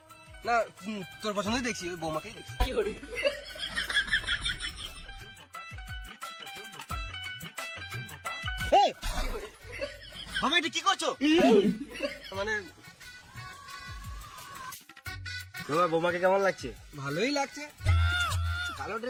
না, তোর পছন্দই দেখছি, ওই বৌমাকেই দেখছি। এই, বাবা এটা কি করছো? মানে তোমার বৌমাকে কেমন লাগছে? ভালোই লাগছে। কালো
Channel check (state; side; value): identical; both; correlation 1.00